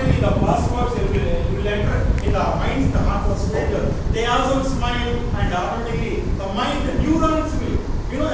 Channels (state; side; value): identical; both; correlation 1.00